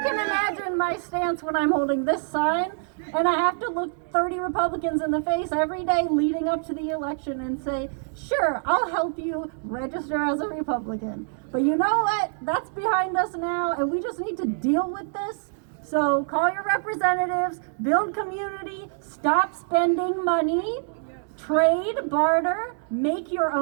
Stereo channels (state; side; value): silent; left; digital silence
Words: imagine my stance when I'm holding this sign, and I have to look 30 Republicans in the face every day leading up to the election and say, sure, I'll help you register as a Republican. But you know what? That's behind us now, and we just need to deal with this. So call your representatives, build community, stop spending money, trade, barter, make your